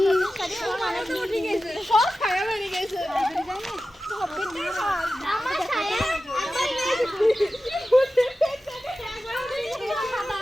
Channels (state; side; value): normal; both; correlation 0.94